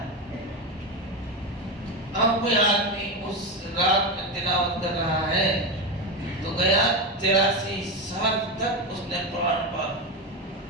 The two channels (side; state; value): both; normal; correlation 0.15